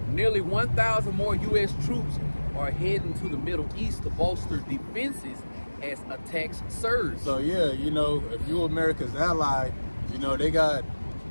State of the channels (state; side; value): inverted; both; correlation -1.00